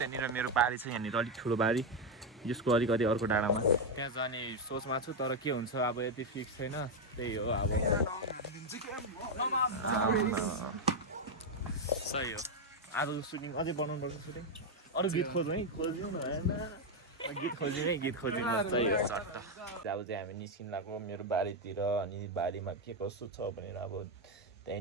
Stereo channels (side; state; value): both; normal; correlation 0.04